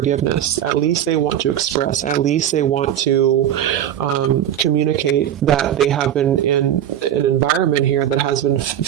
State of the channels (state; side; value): quieter; left; 10.7 dB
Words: At least they want to express, at least they want to communicate that they have been in an environment here that has been